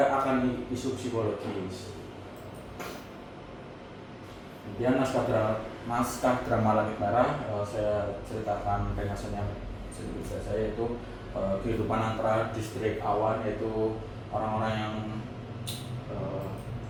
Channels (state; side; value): identical; both; correlation 1.00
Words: akan isu psikologis. Kemudian naskah drama Langit Merah, saya ceritakan ringkasannya sedikit saja, yaitu kehidupan antara distrik awan, yaitu orang-orang yang